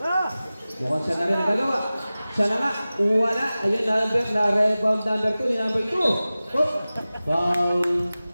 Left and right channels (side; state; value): both; inverted; correlation -0.97